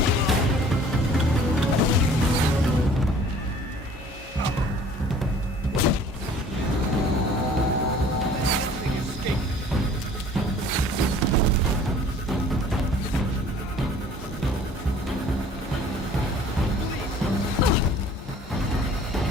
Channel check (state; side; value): normal; both; correlation 0.51